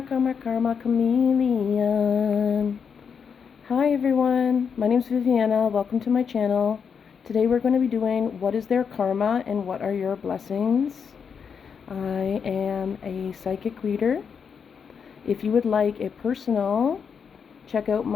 chameleon. Hi everyone, my name is Viviana. Welcome to my channel. Today we're going to be doing what is their karma and what are your blessings. I am a psychic reader. If you would like a personal, check out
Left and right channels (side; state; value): right; quieter; 6.6 dB